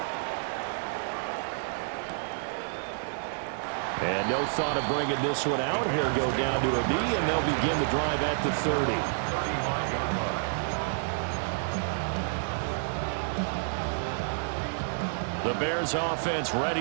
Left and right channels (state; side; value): silent; left; digital silence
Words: And no thought of bringing this one out. Here go down to a knee, and they'll begin the drive at the 30. The Bears offense